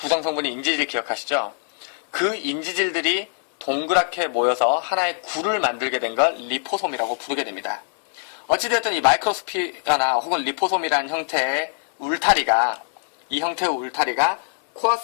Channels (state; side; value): silent; right; 64 dB below the other